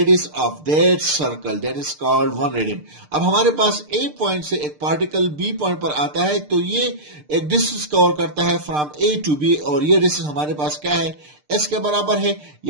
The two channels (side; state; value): left; late; 6.7 ms